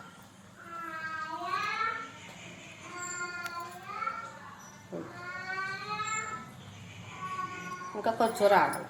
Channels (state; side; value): identical; both; correlation 1.00